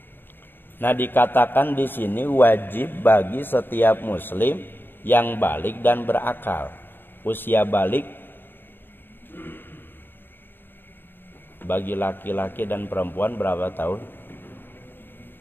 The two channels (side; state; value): right; late; 0.097 ms